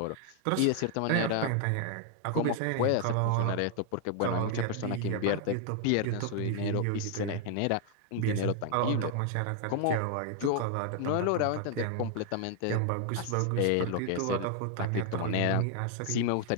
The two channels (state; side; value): different; both; correlation 0.00